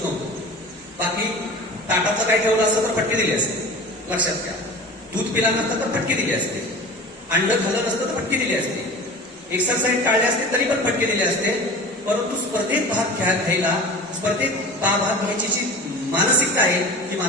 नव्हतो. बाकी ताटाचं काय ठेवलं असतं तर फटके दिली असते, लक्षात घ्या. दूध पिला नसतं तर फटके दिली असते, अंड खाल्लं नसतं तर फटके दिली असते, एक्सरसाइज टाळले असते तरी पण फटके दिले असते. परंतु स्पर्धेत भाग घ्यायला, स्पर्धेत भाग घ्यायची जी मानसिकता आहे, ही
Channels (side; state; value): both; normal; correlation 0.37